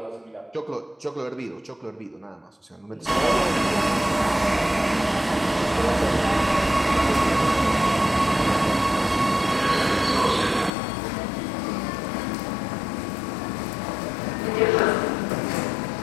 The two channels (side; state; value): right; drops out; at 10.7 s